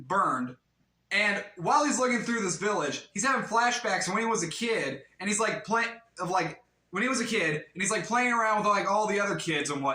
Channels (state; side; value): identical; both; correlation 1.00